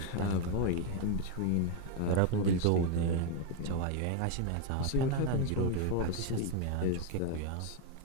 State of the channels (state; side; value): different; both; correlation 0.01